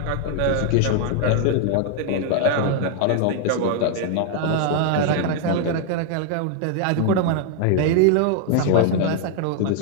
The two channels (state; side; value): different; both; correlation 0.00